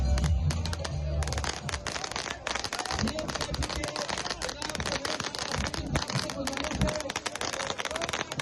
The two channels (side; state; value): both; identical; correlation 1.00